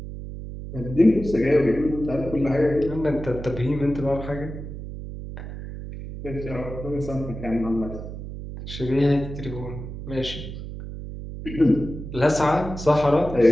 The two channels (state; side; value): noise; right; hum, 9 dB below the sound